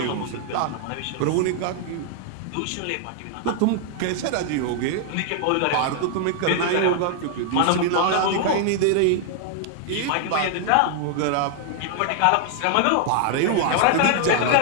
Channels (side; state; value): both; different; correlation 0.00